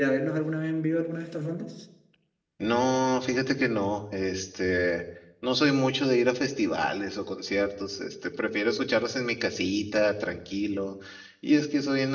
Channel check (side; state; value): both; identical; correlation 1.00